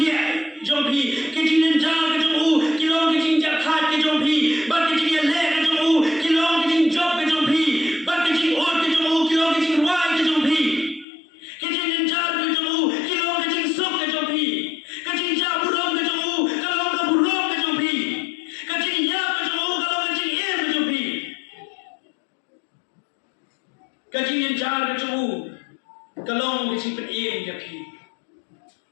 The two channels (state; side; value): drops out; right; at 11.1 s